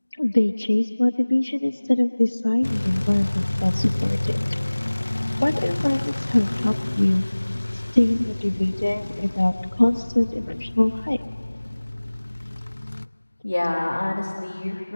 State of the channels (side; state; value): both; inverted; correlation -1.00